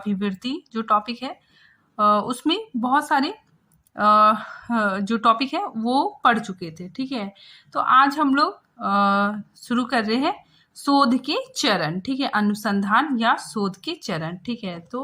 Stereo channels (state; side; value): identical; both; correlation 1.00